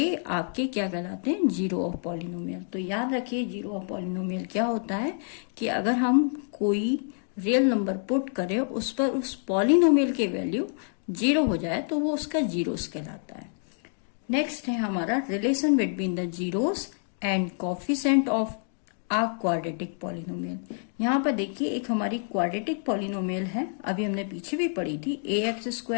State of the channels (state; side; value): silent; right; 60 dB below the other